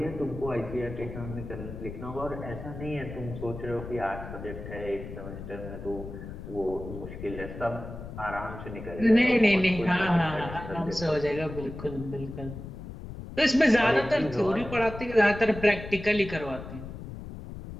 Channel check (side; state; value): left; noise; rumble, 10 dB below the sound